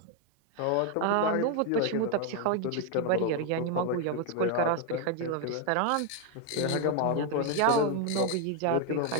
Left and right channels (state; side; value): different; both; correlation 0.01